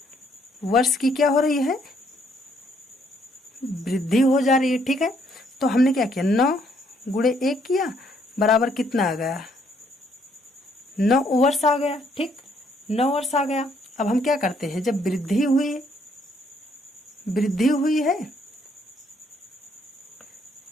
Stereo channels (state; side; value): normal; both; correlation 0.68